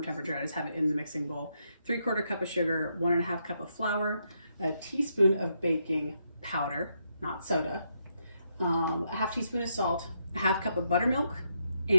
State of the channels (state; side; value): inverted; both; correlation -0.79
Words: I just have it in the mixing bowl. 3/4 cup of sugar, 1.5 cup of flour, a teaspoon of baking powder, not soda, a 1/2 teaspoon of salt, a 1/2 cup of buttermilk,